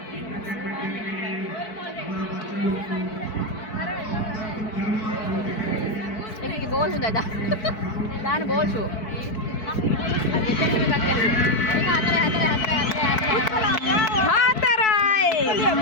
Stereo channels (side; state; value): right; late; 4.6 ms